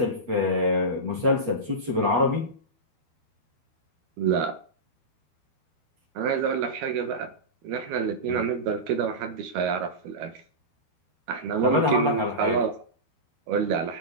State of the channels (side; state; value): left; late; 12 ms